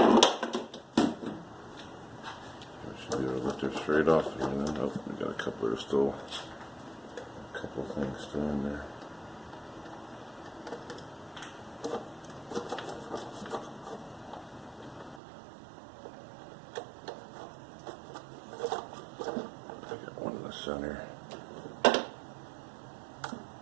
Should be able to lift her straight off. Nope, we got a couple of still, a couple of things still in there. I got one in the center.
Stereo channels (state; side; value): drops out; left; at 15.2 s